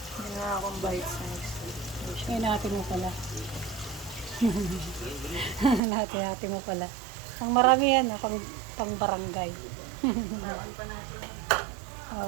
nga akong bite size. Ay, natin mo pala. Natin mo pala. Ang marami yan, pang barangay. Bawal pa natin.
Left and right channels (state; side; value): drops out; left; at 5.8 s